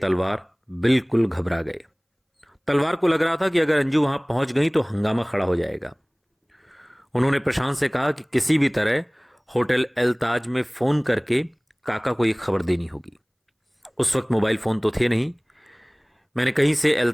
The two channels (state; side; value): identical; both; correlation 1.00